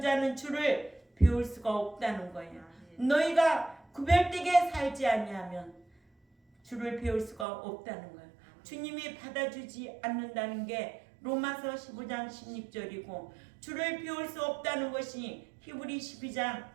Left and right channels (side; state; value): left; drops out; at 7.5 s